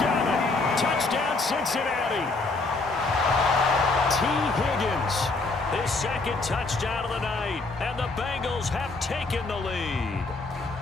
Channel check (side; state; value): right; quieter; 3.5 dB